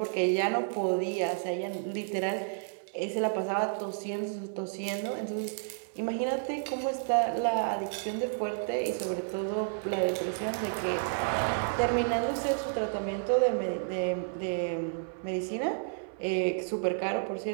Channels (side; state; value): left; silent; 57 dB below the other